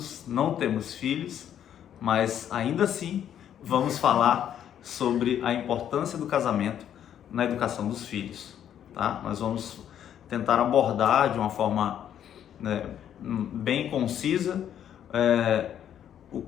não temos filhos, mas ainda assim vamos falar sobre a importância do casamento na educação dos filhos, tá? Nós vamos tentar abordar de uma forma, né, bem concisa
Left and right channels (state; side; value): quieter; right; 9.9 dB